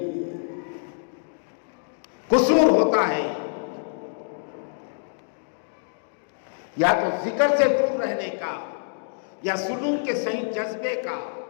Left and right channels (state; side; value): silent; right; digital silence